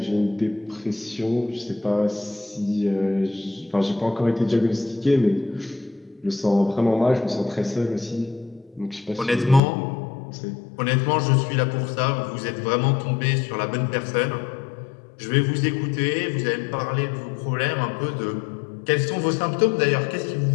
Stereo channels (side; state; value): right; drops out; at 9.6 s